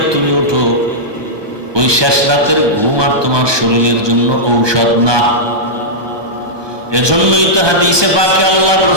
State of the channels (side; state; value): left; late; 1.2 ms